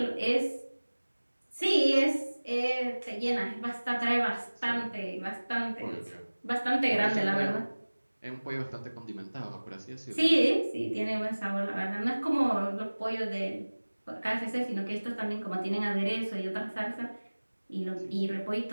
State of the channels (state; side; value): inverted; both; correlation -1.00